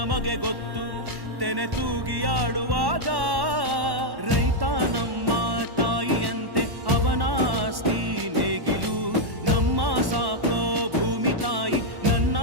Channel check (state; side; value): late; left; 1.1 ms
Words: ಗೊತ್ತು ತೆನೆ ತೂಗಿ ಆಡುವಾಗ ರೈತ ನಮ್ಮ ತಾಯಿಯಂತೆ ಅವನಾಸ್ತಿ ನೇಗಿಲು ನಮ್ಮ ಸಾಕೋ ಭೂಮಿ ತಾಯಿ ನನ್ನ